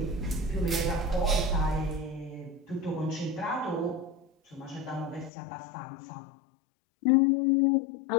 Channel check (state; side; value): drops out; right; at 5.3 s